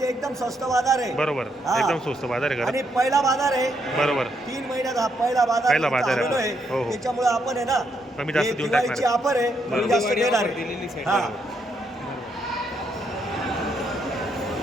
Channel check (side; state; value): both; normal; correlation 0.76